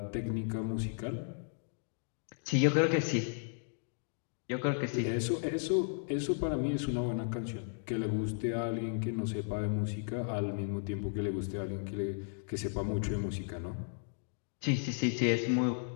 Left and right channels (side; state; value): right; silent; digital silence